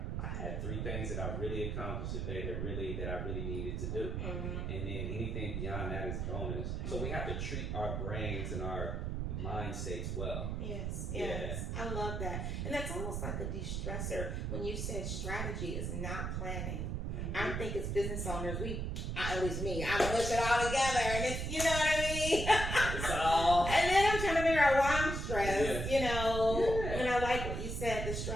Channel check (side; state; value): right; noise; rumble, 2 dB below the sound